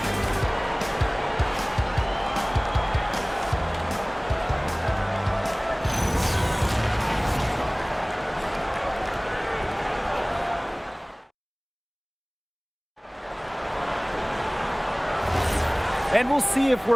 And we'll see if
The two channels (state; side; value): identical; both; correlation 1.00